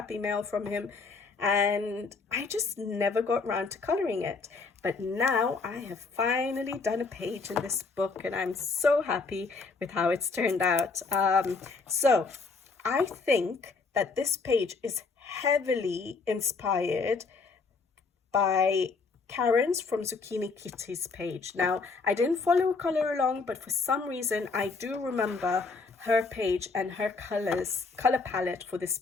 mail from him, and I just never got round to colouring it. But now I have finally done a page in this book, and I'm so happy with how it's turned out. So I think that this page is heavily inspired by Karen's from Zucchini Kitty's page. Now, I didn't follow a colour along, but for some reason I do remember her page and her colour palette for this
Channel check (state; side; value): quieter; right; 4.4 dB